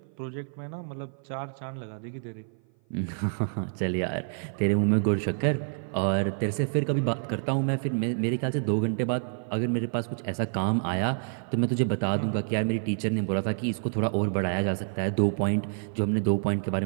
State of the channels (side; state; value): left; silent; 56 dB below the other